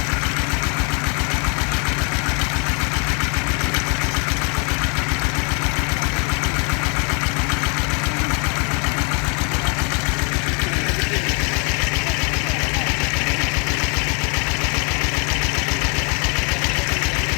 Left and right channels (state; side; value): quieter; right; 35.4 dB